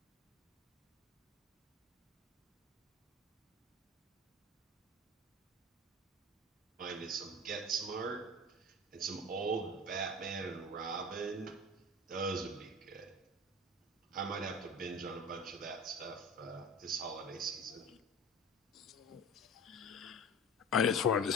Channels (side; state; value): both; normal; correlation 0.36